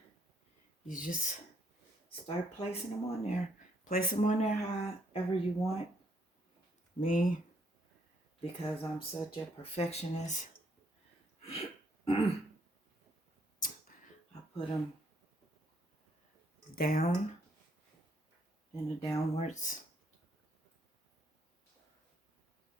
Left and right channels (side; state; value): both; normal; correlation 0.71